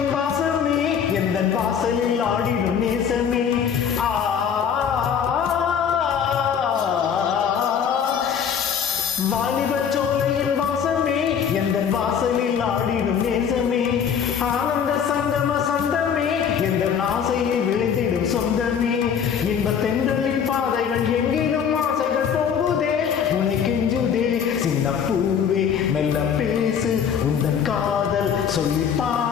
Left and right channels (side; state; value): right; quieter; 7.6 dB